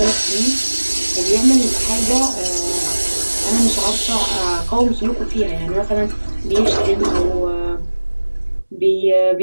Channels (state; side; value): inverted; both; correlation -1.00